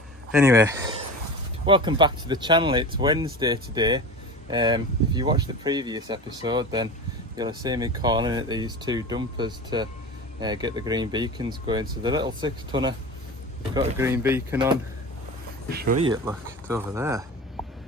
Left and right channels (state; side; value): normal; both; correlation 0.31